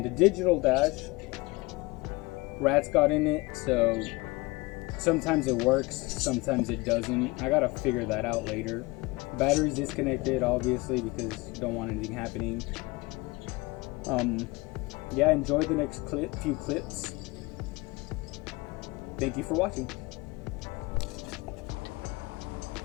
the digital dash, rats got in it, so Sometimes it works, sometimes it doesn't. I gotta figure that out later. Battery's disconnected, obviously, because don't want anything happening. Yeah, enjoy the next few clips. Thank you for watching.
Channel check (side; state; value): right; quieter; 23.9 dB